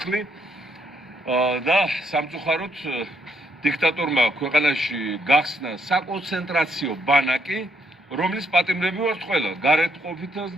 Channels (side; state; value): both; normal; correlation 0.72